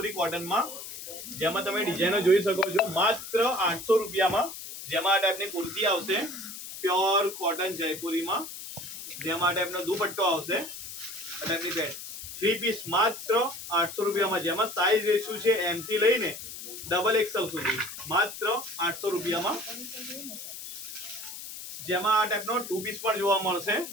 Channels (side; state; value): left; noise; hiss, 10 dB below the sound